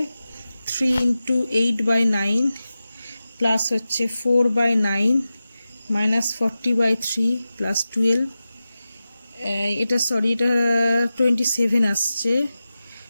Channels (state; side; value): inverted; both; correlation -0.94